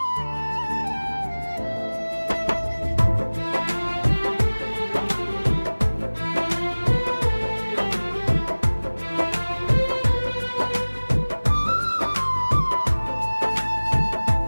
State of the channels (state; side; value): inverted; both; correlation -1.00